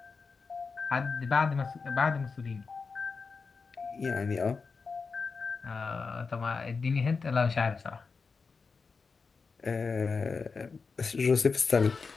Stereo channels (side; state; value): right; quieter; 4.8 dB